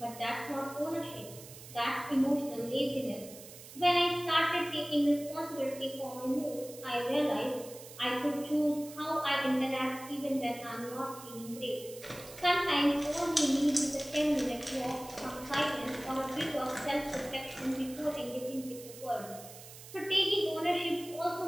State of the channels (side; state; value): right; noise; hiss, 16 dB below the sound